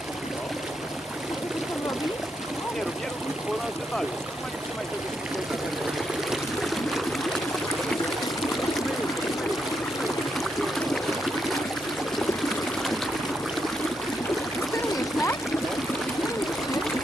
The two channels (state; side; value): normal; both; correlation 0.80